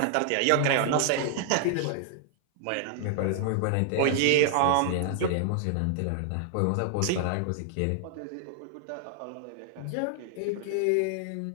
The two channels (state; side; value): different; both; correlation 0.00